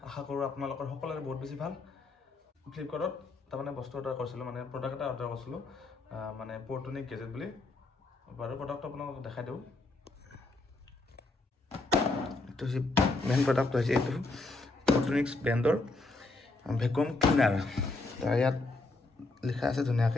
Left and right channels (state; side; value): quieter; right; 3.2 dB